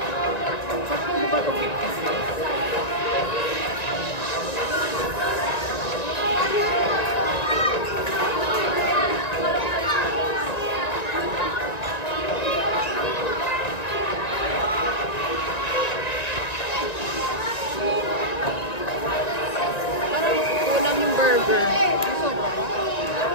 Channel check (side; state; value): right; late; 1.9 ms